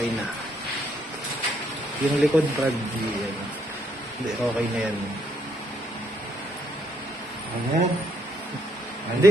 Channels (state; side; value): normal; both; correlation 0.71